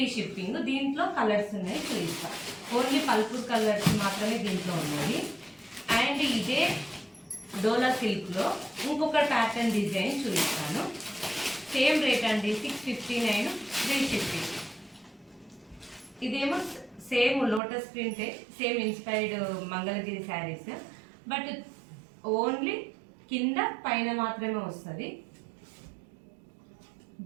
షిప్పింగ్. దీంట్లో కలర్స్ ఉన్నాయి, చూపిస్తాం. ఓన్లీ పల్పూర్ కలర్స్ మాత్రమే దీంట్లో ఉన్నాయి. అండ్ ఇదే డోలా సిల్క్లో ఇంకొక ప్యాటర్న్ డిజైన్ చూపిస్తాను. సేమ్ రేట్ అండి, 659 ఫ్రీ షిప్పింగ్. ఇదేమో సేమ్ లోటస్ ప్రింటే, same inspired Mangalagiri saris, but only కింద పైన మాత్రమే వస్తుంది.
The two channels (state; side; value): drops out; left; at 17.6 s